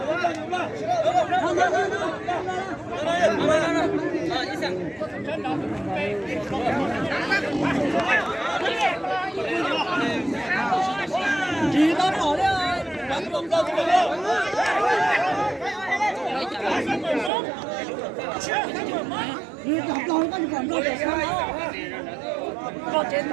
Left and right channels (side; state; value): left; drops out; at 17.3 s